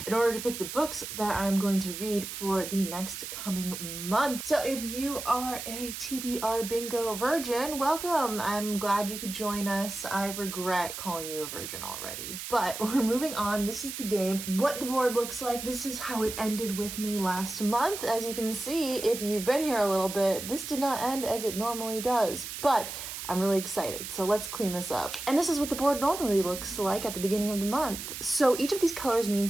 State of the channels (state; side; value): noise; right; hiss, 8 dB below the sound